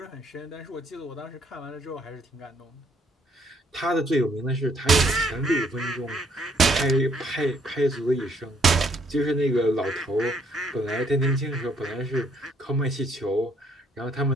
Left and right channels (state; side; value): normal; both; correlation 0.68